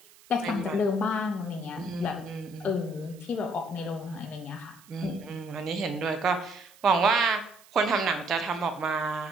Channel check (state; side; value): noise; right; hiss, 25 dB below the sound